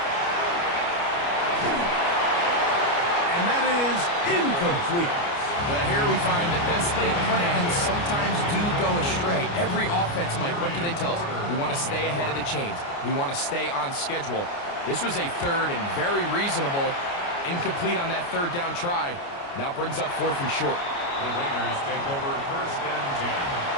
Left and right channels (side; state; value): right; late; 29 ms